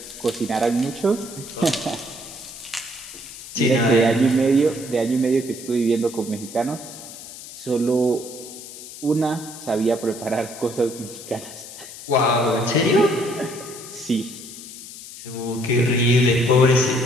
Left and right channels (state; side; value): noise; left; hiss, 14 dB below the sound